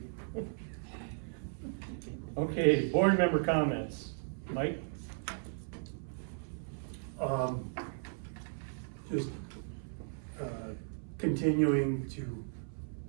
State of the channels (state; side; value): silent; left; 54 dB below the other